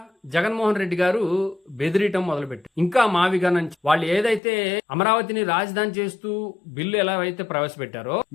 జగన్మోహన్ రెడ్డి గారు బెదిరియటం మొదలుపెట్టారు. ఇంకా మావిగా నుంచి వాళ్ళు ఏదైతే అమరావతిని రాజధాని చేస్తూ బిల్లు ఎలా అయితే ప్రవేశపెట్టారో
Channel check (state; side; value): drops out; right; at 4.4 s